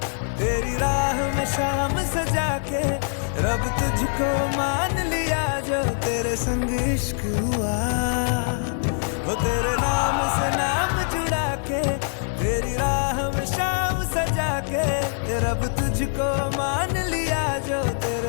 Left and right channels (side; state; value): right; silent; digital silence